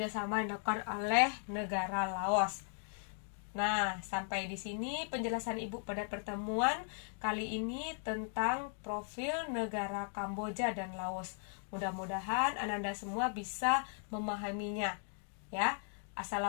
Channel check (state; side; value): silent; right; 53 dB below the other